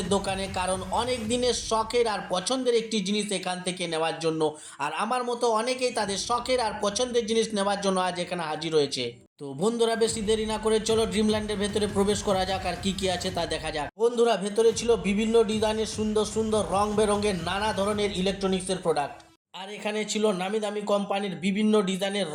দোকানে, কারণ অনেক দিনের শখের আর পছন্দের একটি জিনিস এখান থেকে নেওয়ার জন্য। আর আমার মতো অনেকেই তাদের শখের আর পছন্দের জিনিস নেওয়ার জন্য আজ এখানে হাজির হয়েছে। তো বন্ধুরা, বেশি দেরি না করে চলো ড্রিমল্যান্ডের ভেতরে প্রবেশ করা যাক আর কি কি আছে তা দেখা যাক। বন্ধুরা, ভেতরে ছিল বিভিন্ন ডিজাইনের সুন্দর সুন্দর রং বেরঙের নানা ধরনের ইলেকট্রনিক্সের প্রোডাক্ট। আর এখানে ছিল নামি দামি কোম্পানির বিভিন্ন ডিজাইনের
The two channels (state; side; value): identical; both; correlation 1.00